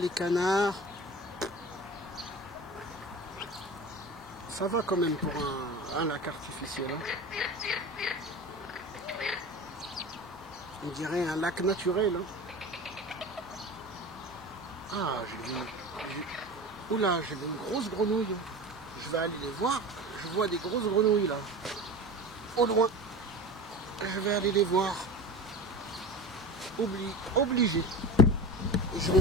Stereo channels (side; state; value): both; normal; correlation 0.31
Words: canards. Ça va quand même pour un lac artificiel. Hein. On dirait un lac naturel. Hein. Ah, j'ai vu... Oula, j'ai vu une grosse grenouille. Je vais aller les voir. Je vois des grosses grenouilles là. Au loin. Je vais aller les voir. Obligé. Et je vais